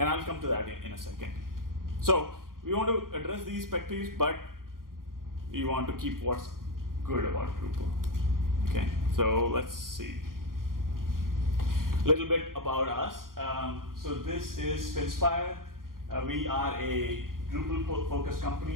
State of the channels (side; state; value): left; late; 0.91 ms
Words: come to that in a second. So we want to address these pet peeves, but we want to keep what's good about Drupal. Okay, so let's see. A little bit about us. So this is Finspire. We are a Drupal-focused